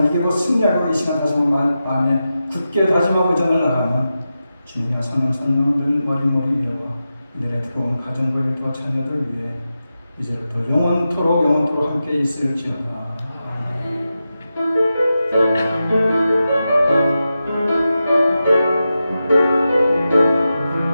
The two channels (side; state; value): both; inverted; correlation -0.91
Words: 이기고 승리하고 이 시간 다시 마음에 굳게 다짐하고 전을 나가면 주님의 선한 성령을 머리머리 위에와 이들의 들어온 가정들과 자녀들 위해 이제부터 영원토록 함께 있을지어다.